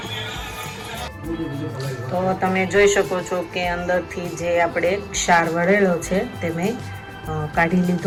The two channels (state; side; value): identical; both; correlation 1.00